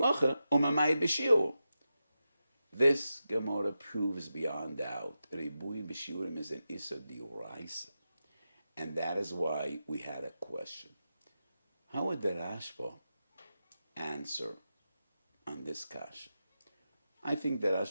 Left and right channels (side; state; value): both; inverted; correlation -0.90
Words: u'mamayit b'shiur? This Gemara proves beyond doubt Rebui B'Shiurim is an Issa D'Oraisa. And that is why we had a question. How would the Rashba answer on this kasha? I think the